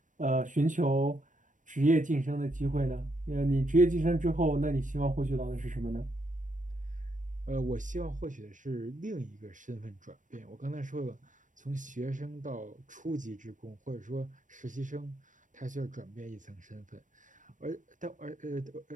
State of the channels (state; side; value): late; left; 0.37 ms